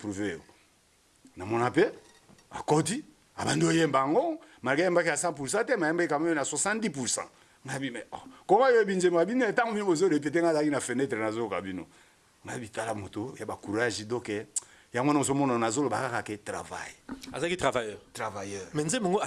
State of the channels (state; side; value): identical; both; correlation 1.00